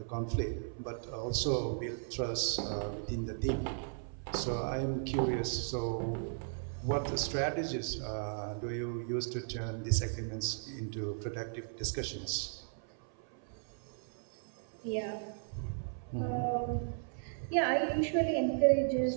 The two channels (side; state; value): left; silent; 54 dB below the other